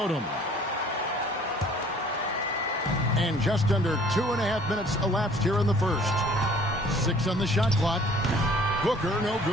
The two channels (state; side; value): normal; both; correlation 0.54